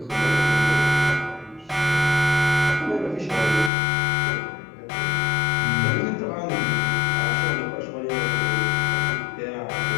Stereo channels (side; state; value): right; drops out; at 3.7 s